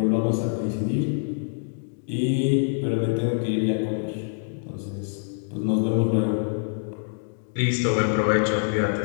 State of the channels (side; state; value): right; silent; digital silence